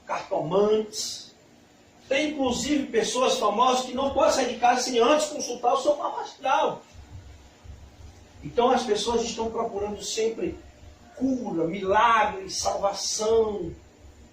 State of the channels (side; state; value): both; identical; correlation 1.00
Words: cartomantes. Tem inclusive pessoas famosas que não podem sair de casa sem antes consultar o seu mapa astral. Então as pessoas estão procurando sempre cura, milagres, salvação,